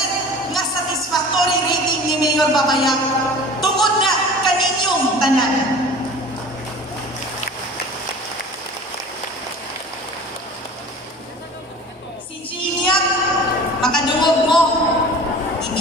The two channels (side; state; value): both; normal; correlation 0.41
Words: nga satisfactory rating ni Mayor Babayang tungod na kaninyong tanan. Si Jillian, makadungog mo,